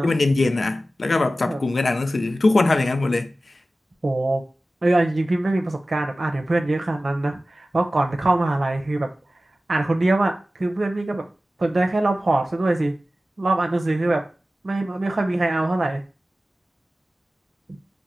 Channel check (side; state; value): both; normal; correlation 0.95